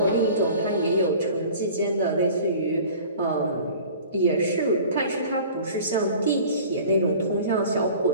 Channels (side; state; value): both; inverted; correlation -0.44